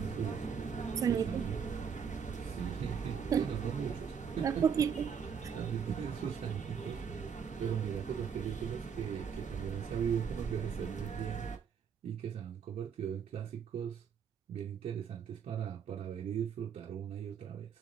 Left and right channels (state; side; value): quieter; left; 7.0 dB